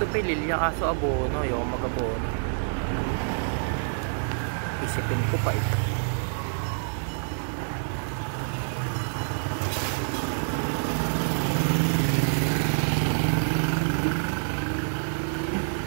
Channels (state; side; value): silent; left; digital silence